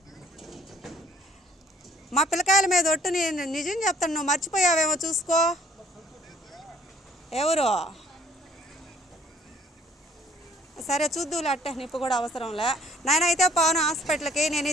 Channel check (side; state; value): both; normal; correlation 0.59